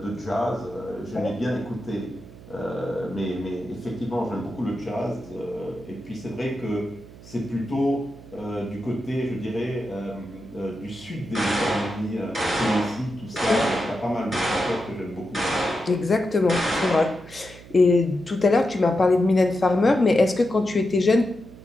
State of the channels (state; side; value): noise; right; hum, 19 dB below the sound